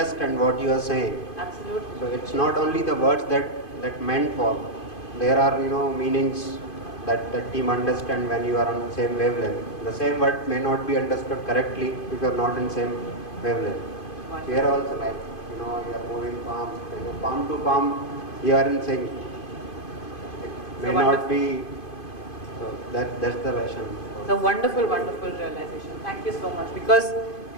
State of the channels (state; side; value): late; right; 2.5 ms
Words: what you are saying. Absolutely. So, it's not only the words that meant for. There are, meanings that team understand when you are on the same wavelength. The same word may not be understood correctly if you are not in same wavelength. Here also like, you are moving palm to palm, you are in sync. It may not be, so that's the version. It's a wonderful, wonderful realization. Thank you so much. Because